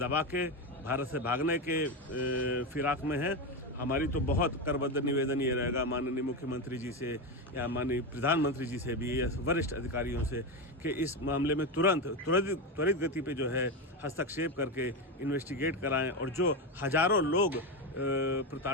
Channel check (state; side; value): normal; both; correlation 0.14